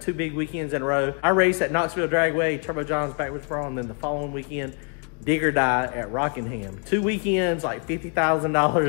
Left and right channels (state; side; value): quieter; right; 39.3 dB